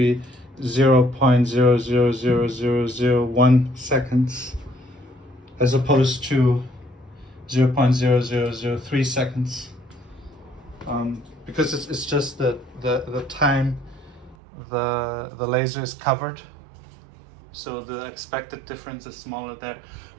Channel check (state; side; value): drops out; left; at 14.4 s